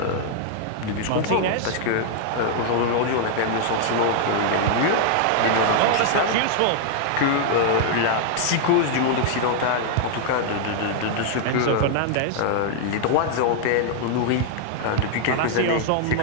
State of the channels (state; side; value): different; both; correlation 0.00